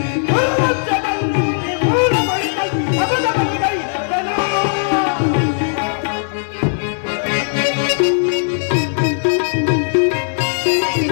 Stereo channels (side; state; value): right; silent; digital silence